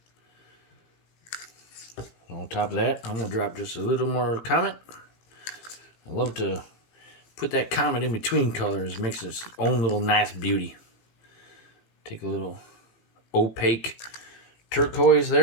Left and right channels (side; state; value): right; late; 18 ms